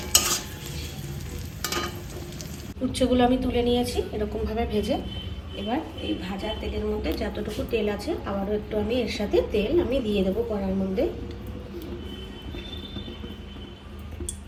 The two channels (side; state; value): both; identical; correlation 1.00